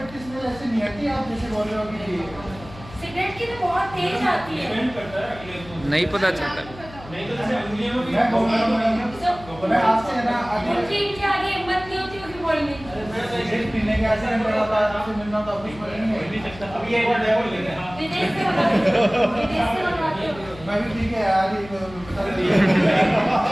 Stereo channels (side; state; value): left; noise; hum, 17 dB below the sound